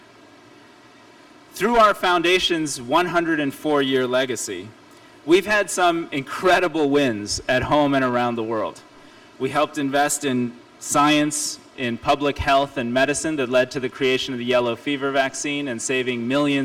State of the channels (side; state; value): both; identical; correlation 1.00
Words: Through our foundation's 104-year legacy, we've had some incredible wins at home and around the world. We helped invest in science, in public health and medicine that led to the creation of the yellow fever vaccine and saving